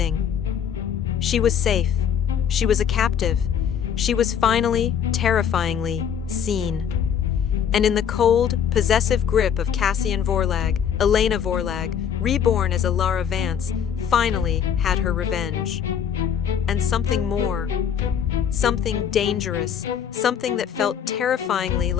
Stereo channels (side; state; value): right; quieter; 8.2 dB